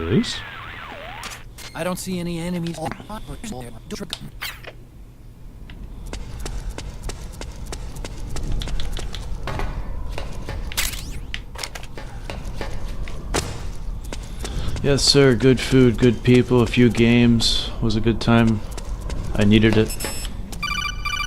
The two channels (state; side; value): identical; both; correlation 1.00